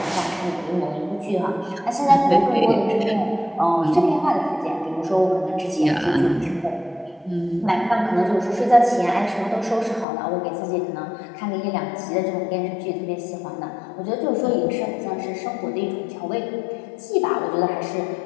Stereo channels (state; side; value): drops out; right; at 10.1 s